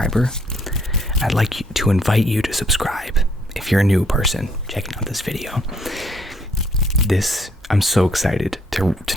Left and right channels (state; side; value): normal; both; correlation 0.67